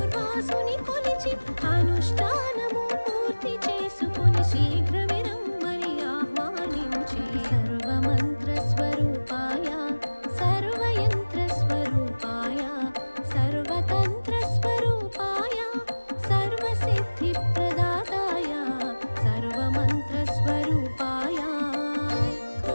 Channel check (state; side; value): inverted; both; correlation -1.00